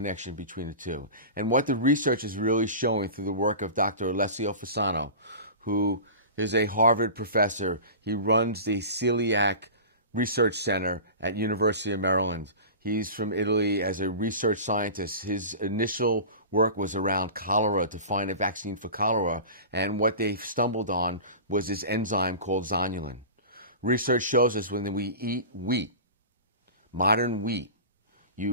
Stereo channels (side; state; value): both; inverted; correlation -0.33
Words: between the two. And what the research is really showing through the work of Dr. Alessio Fasano, who is a Harvard professor. He runs the Celiac Research Center at University of Maryland. He's from Italy as a research scientist. His initial work was around cholera, to find a vaccine for cholera, and what they stumbled on was this enzyme called zonulin. Research shows us when we eat wheat, modern wheat,